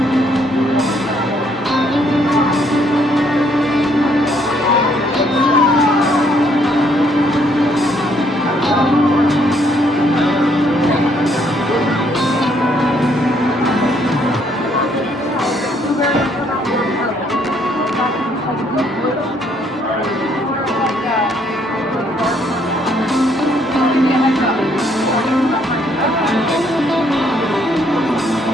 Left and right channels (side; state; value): both; normal; correlation 0.68